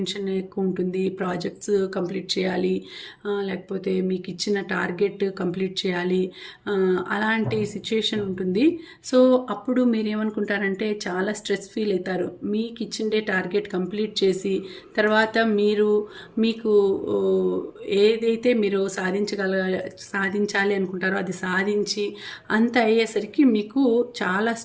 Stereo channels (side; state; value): both; identical; correlation 1.00